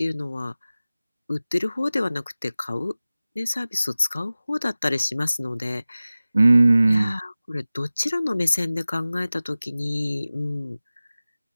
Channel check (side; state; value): both; inverted; correlation -0.97